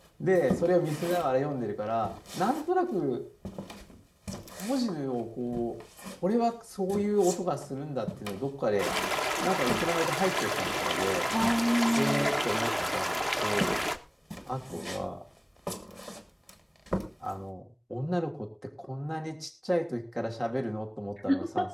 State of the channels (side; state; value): both; identical; correlation 1.00